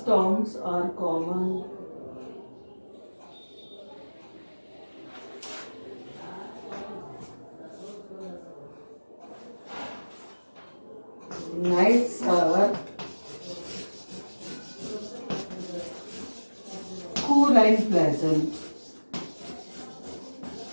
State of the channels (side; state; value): both; inverted; correlation -1.00